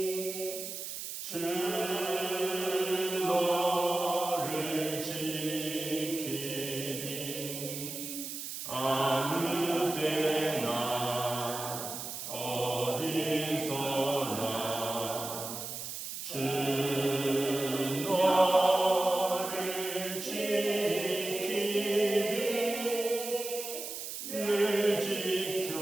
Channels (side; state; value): right; noise; hiss, 7 dB below the sound